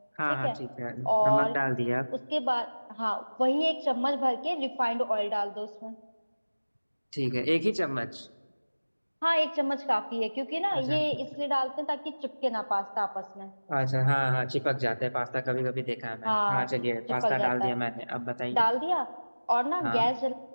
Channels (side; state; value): both; inverted; correlation -1.00